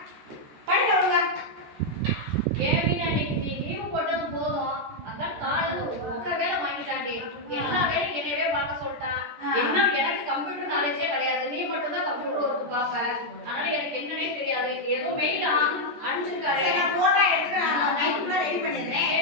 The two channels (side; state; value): left; late; 14 ms